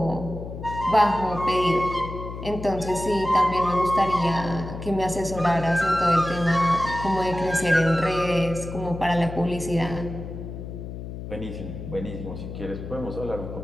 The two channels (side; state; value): left; noise; hum, 9 dB below the sound